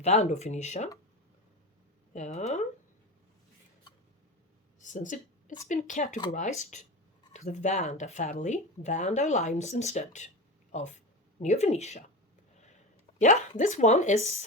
Yeah. Since it's been categorized to the Vanda family, Vanda limes instead of Neofinetia. Yeah, this one is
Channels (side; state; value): both; normal; correlation 0.25